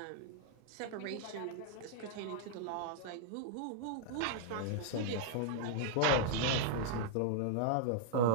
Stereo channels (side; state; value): both; different; correlation -0.01